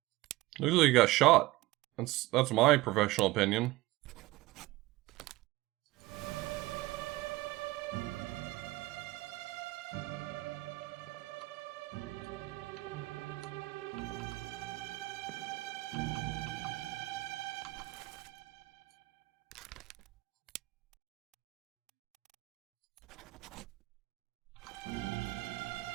Looks like he got shot. That's my professional opinion.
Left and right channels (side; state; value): left; quieter; 19.2 dB